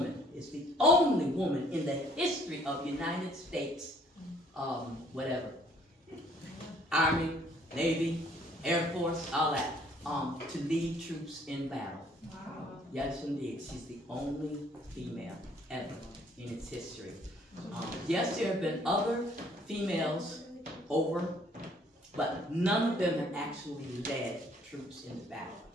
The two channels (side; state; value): both; normal; correlation 0.61